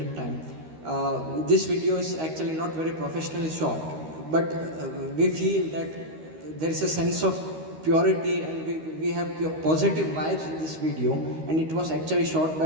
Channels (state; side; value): late; left; 13 ms